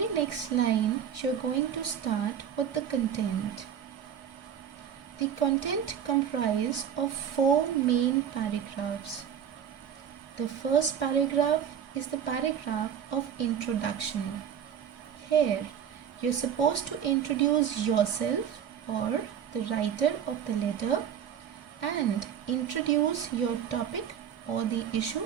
next line, you are going to start with the content. The content comprises of 4 main paragraphs. The first paragraph is the paragraph of introduction. Here, you are supposed to introduce yourself or the writer of the letter and introduce your topic or the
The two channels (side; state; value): left; quieter; 8.6 dB